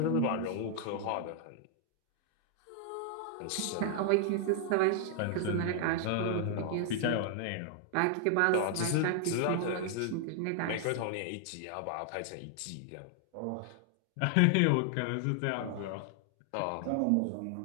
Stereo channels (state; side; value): different; both; correlation 0.00